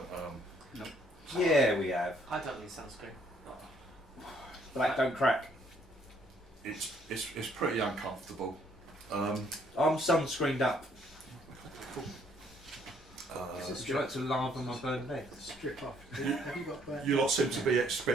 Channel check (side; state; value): both; normal; correlation 0.66